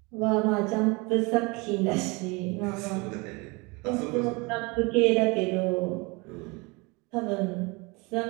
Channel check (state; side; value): quieter; left; 27.3 dB